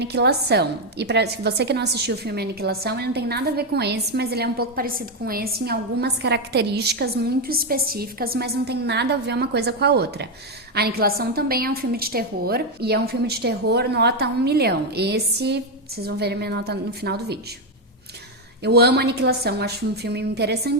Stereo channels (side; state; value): both; normal; correlation 0.05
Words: E para você que não assistiu o filme Aniquilação, ele não tem nada a ver com esse, mas ele é um pouco parecido com esse em algumas características muito específicas, mas não tem nada a ver uma coisa com a outra. A Aniquilação também é um filme de terror, e é um filme de terror nota 1 milhão. Esse, vocês vão ver a minha nota no final do vídeo. Eu amo Aniquilação, acho um filme